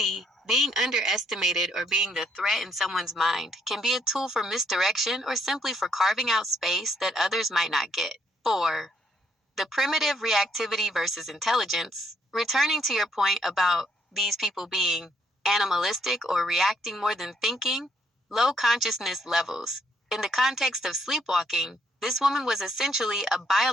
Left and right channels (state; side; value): normal; both; correlation 0.70